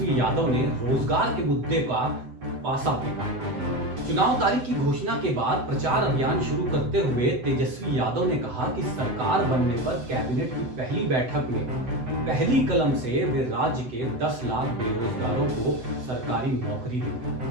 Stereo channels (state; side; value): late; left; 7.9 ms